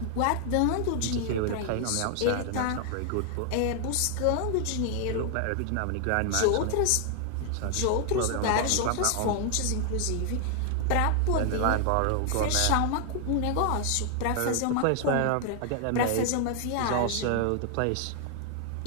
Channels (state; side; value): different; both; correlation 0.00